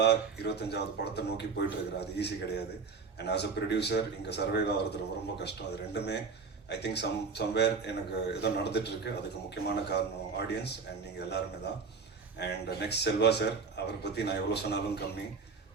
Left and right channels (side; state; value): left; quieter; 5.0 dB